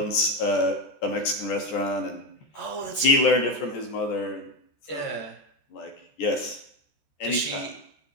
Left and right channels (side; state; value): right; late; 13 ms